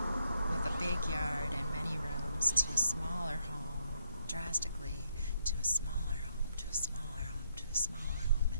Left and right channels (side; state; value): both; inverted; correlation -0.75